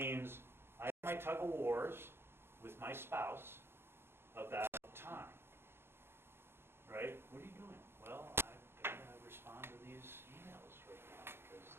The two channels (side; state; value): left; late; 0.11 ms